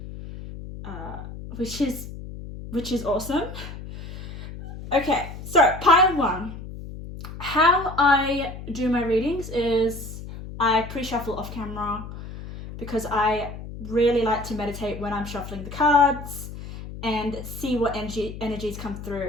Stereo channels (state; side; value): noise; left; hum, 11 dB below the sound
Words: which is awesome. Okay, so pile 1. How I do my readings is I pre-shuffle off camera because I really like to meditate when I'm shuffling the cards and see what energies come